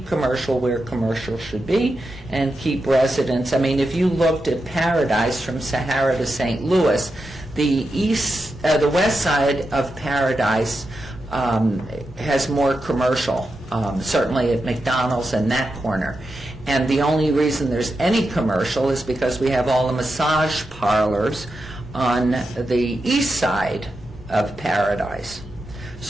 commercial where commercial should be, and keep residents. I mean, if you looked at Paradise from Sahara to St. Louis, the west side of Paradise has more commercial, certainly at McDonald's and that corner. And the only reason there's any commercial is because we have all the massage parlors on the east side of Paradise.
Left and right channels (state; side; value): normal; both; correlation 0.88